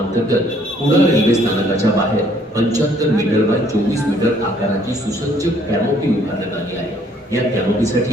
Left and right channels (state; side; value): normal; both; correlation 0.63